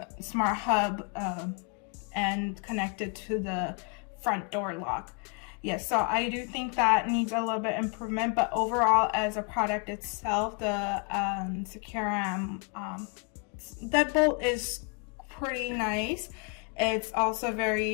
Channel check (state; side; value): quieter; right; 36.9 dB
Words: Smart Hub and connect it to the front door lock. Yes, so I do think that needs a little bit improvement, but overall as a product itself, the SECURAM deadbolt is pretty nice. It's also